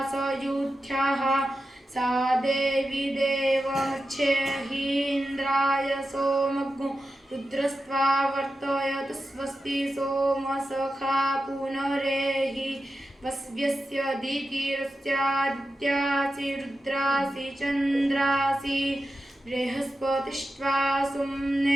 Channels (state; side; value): normal; both; correlation 0.91